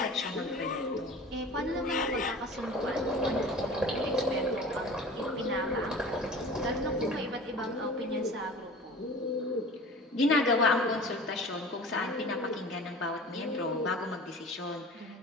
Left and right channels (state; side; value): normal; both; correlation 0.40